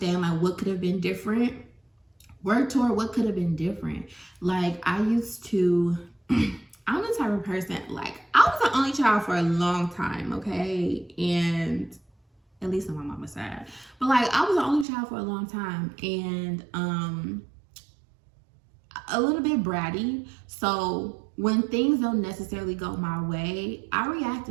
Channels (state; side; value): drops out; left; at 14.9 s